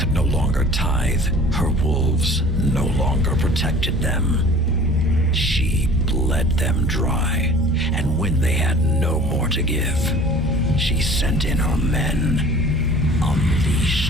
no longer tithe, her wolves no longer protected them. She bled them dry, and when they had no more to give, she sent in her men,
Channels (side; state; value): both; normal; correlation 0.46